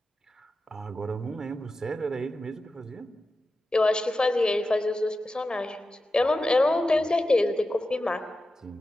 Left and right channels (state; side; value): normal; both; correlation 0.92